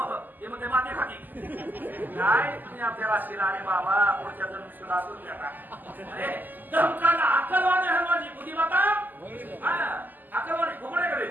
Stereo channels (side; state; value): left; late; 0.086 ms